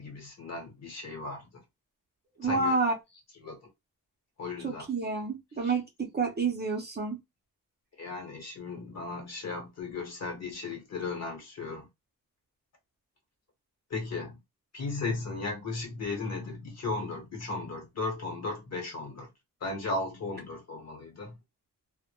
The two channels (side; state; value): both; normal; correlation 0.02